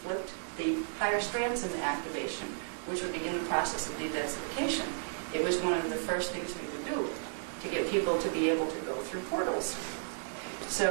the higher strands into activation, which would begin the process of de-densification. It was one of the first things we would do to get people to be able to go through portals.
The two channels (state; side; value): silent; left; digital silence